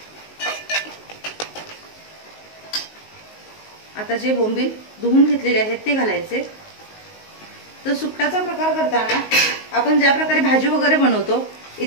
आता जे बोंबील धुवून घेतलेले आहेत ते घालायचे. तर सुकटाचा प्रकार करताना आपण ज्या प्रकारे भाजी वगैरे बनवतो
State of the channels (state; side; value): late; right; 19 ms